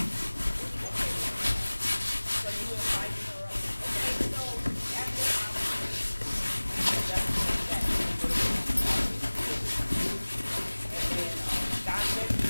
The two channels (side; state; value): both; inverted; correlation -1.00